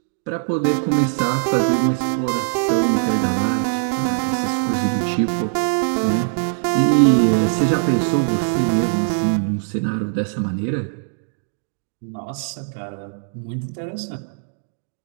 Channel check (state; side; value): silent; left; digital silence